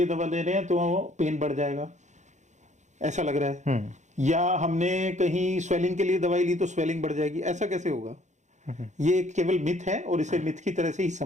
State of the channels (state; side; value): late; left; 0.34 ms